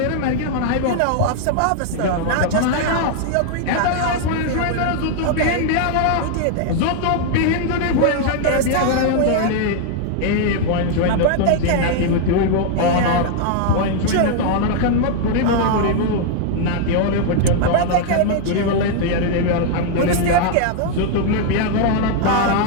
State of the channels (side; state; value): both; different; correlation 0.00